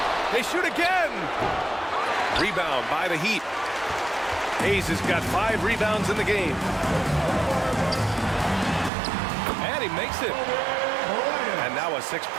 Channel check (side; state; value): left; drops out; at 8.9 s